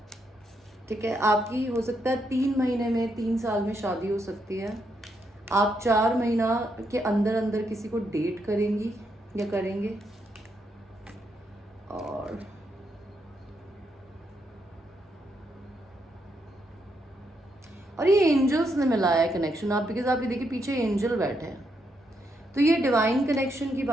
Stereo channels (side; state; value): both; normal; correlation 0.79